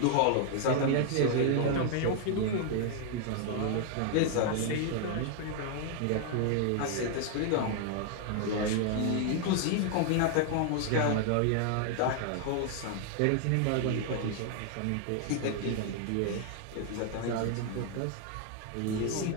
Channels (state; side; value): different; both; correlation 0.00